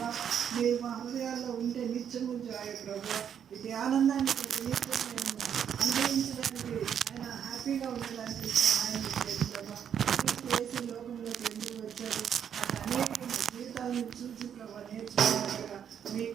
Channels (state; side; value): quieter; left; 8.5 dB